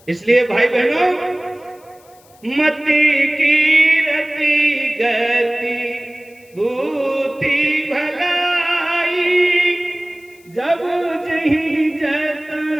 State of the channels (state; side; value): noise; left; hiss, 29 dB below the sound